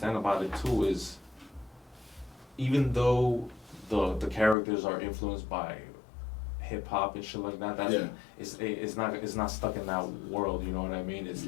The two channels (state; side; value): drops out; right; at 4.5 s